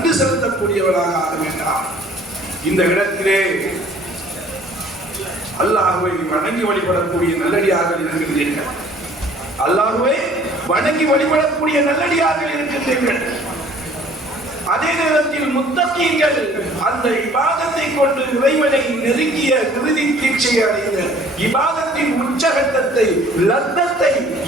செலுத்தக்கூடியவனாக ஆக வேண்டாம். இந்த இடத்திலே அல்லாஹ்வை வணங்கி வழிபடக்கூடிய நல்லடியார்கள் இருக்கின்றீர்கள். அல்லாஹ்வை வணங்கி வழிபடக்கூடிய நல்லடியார்கள் இருக்கின்றீர்கள். அதே நேரத்தில் முத்தகீன்கள் அந்த இபாதத்தை கொண்டு இறைவனை நெருங்கிய இறுதி தீட்சையை அடைந்த இபாதத்தின் உச்சகட்டத்தை, லத்தத்தை,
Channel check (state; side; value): normal; both; correlation 0.54